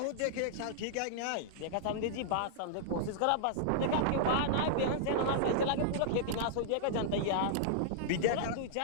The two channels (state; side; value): different; both; correlation -0.02